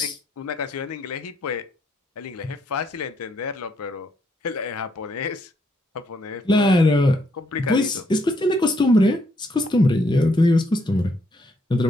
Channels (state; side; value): normal; both; correlation 0.73